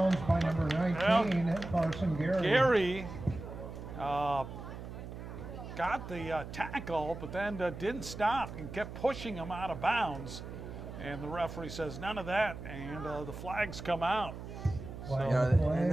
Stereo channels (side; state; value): right; noise; hum, 10 dB below the sound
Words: by number 19, Carson Gary. Gary got the tackle, but then didn't stop and kept pushing him out of bounds. And the referee says none of that, and the flags come out. You know, and